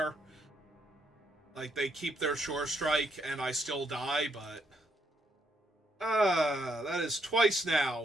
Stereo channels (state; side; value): normal; both; correlation 0.76